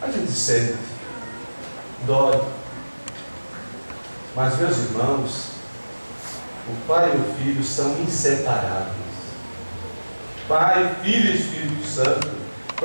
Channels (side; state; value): both; inverted; correlation -1.00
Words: a gente sente, dói. Mas, meus irmãos, o Pai e o Filho são inseparáveis. Pai, Filho e Espírito Santo. O